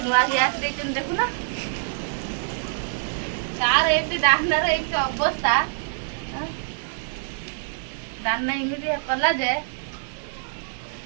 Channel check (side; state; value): left; silent; digital silence